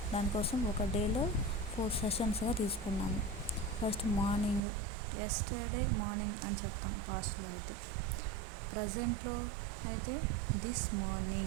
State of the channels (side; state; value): left; drops out; at 4.6 s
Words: దానికోసం ఒక డేలో 4 సెషన్స్గా తీసుకున్నాము. ఫస్ట్ మార్నింగ్, ఎస్టర్డే మార్నింగ్ అని చెప్తాం పాస్ట్లో అయితే. ప్రజెంట్లో అయితే దిస్